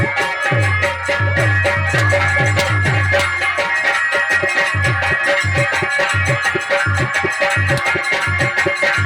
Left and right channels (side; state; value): both; identical; correlation 1.00